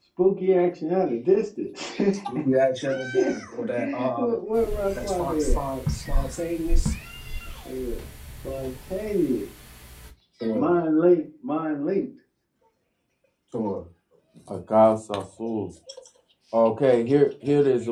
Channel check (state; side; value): identical; both; correlation 1.00